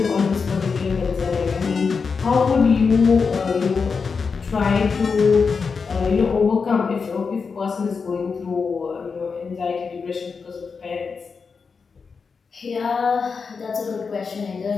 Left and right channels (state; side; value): quieter; right; 5.2 dB